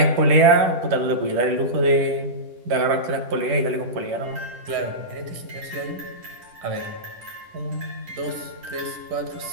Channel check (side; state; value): left; late; 10 ms